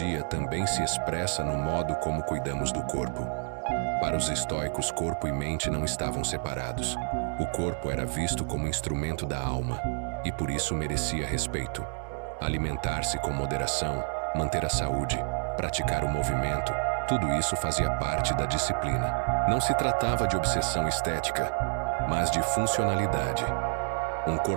também se expressa no modo como cuidamos do corpo. Para os estoicos, corpo e mente não estavam separados. O corpo era visto como instrumento da alma e por isso merecia respeito. Alimentar-se com moderação, manter a saúde, praticar o movimento, tudo isso fazia parte da disciplina. Não se tratava de obsessão estética, mas de funcionalidade. Um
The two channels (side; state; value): left; silent; 59 dB below the other